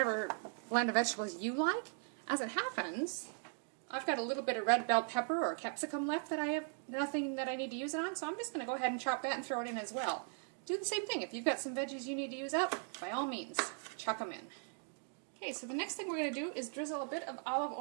blend of vegetables you like. As it happens, I've got a little bit of red bell pepper or capsicum left that I have nothing that I need to use it on, so I'm just going to go ahead and chop that and throw it in as well. Do the same thing. If you've got some veggies you need to use up, by all means, chuck them in. Okay, so the next thing we're going to do is drizzle a bit of olive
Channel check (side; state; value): left; silent; 52 dB below the other